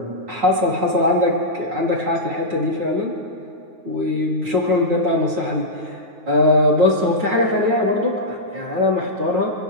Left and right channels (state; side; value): late; left; 9.3 ms